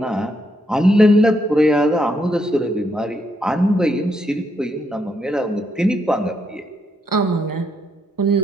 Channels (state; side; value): normal; both; correlation 0.77